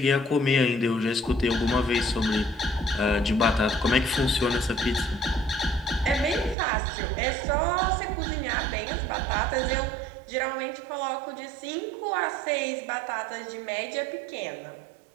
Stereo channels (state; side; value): drops out; left; at 6.6 s